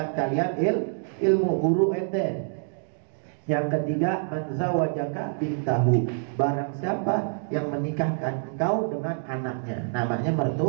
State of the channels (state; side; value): silent; left; digital silence